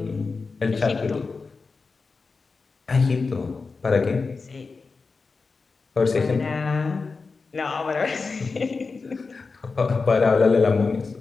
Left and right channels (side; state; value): right; quieter; 4.4 dB